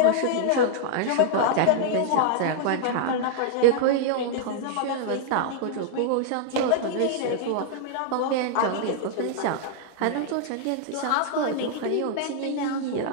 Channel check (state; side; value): different; both; correlation -0.01